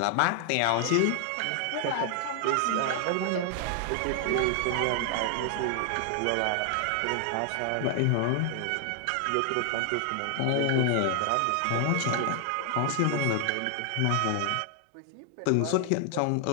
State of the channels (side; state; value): both; different; correlation 0.00